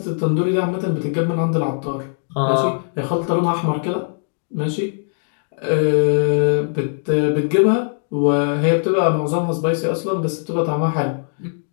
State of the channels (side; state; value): right; silent; 66 dB below the other